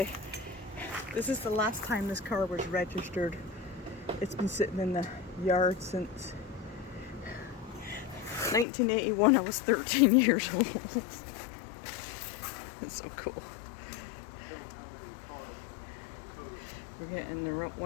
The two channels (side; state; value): right; drops out; at 8.7 s